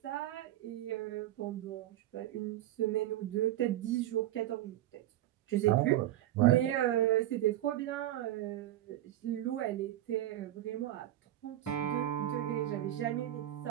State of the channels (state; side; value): quieter; left; 13.7 dB